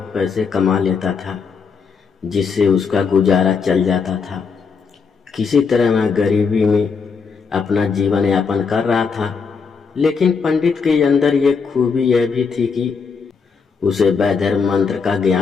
पैसे कमा लेता था, जिससे उसका गुजारा चल जाता था। किसी तरह वह गरीबी में अपना जीवन यापन कर रहा था। लेकिन पंडित के अंदर एक खूबी यह भी थी कि उसे वैधर्म मंत्र का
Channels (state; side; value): quieter; right; 5.5 dB